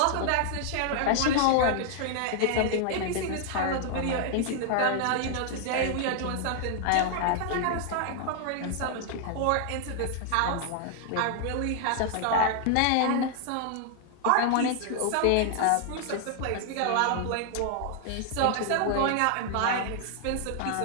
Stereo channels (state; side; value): different; both; correlation 0.00